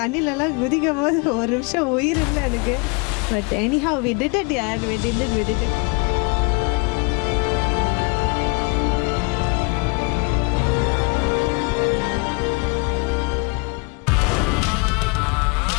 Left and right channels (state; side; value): quieter; right; 30.7 dB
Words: தண்ணியிலலாம் குதிக்கும் போது ஒரு நிமிஷம் உயிர் இல்லை எனக்கு. But anyhow we did it யார் வி டிட் இட்.